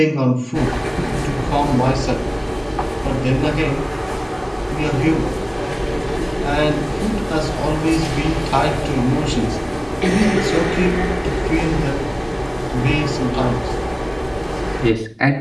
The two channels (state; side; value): identical; both; correlation 1.00